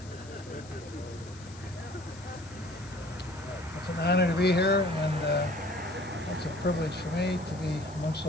It's an honor to be here, and it's a privilege for me to be amongst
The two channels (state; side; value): noise; left; hiss, 20 dB below the sound